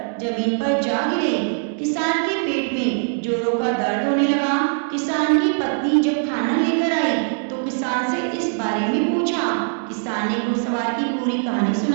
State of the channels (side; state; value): left; silent; 62 dB below the other